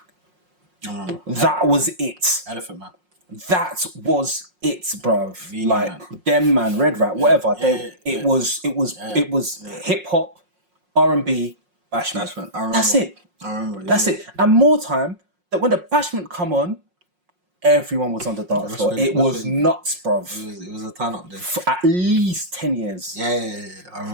That was it. Elephant Man. That was it, bruv. Like them man, Red Rat, whatever. It was hip hop, R&B, Bashment. That's it. I remember. That's it. And more time that when the Bashment come on, everyone was on the dance floor. It was nuts, bruv. It was a turn up then. For at least 10 years. Yeah. I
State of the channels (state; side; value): late; left; 5.5 ms